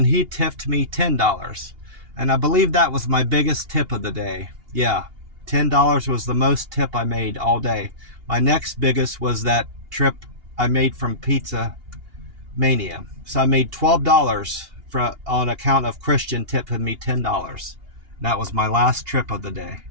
he tipped me $10. And I believe that was my biggest tip of the day. Yeah, $10 was the most tip I made all day. My next biggest was that trip I made from Pizza Mania. So I made $12 on account of Christian tipping me $10. That was my last trip of the day.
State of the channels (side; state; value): left; late; 2.8 ms